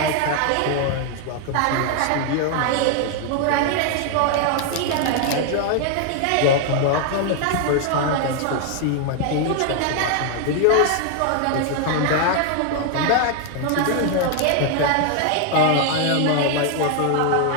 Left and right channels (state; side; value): different; both; correlation 0.00